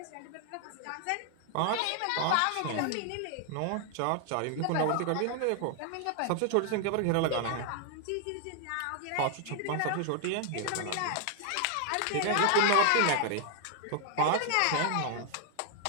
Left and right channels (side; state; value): both; different; correlation 0.00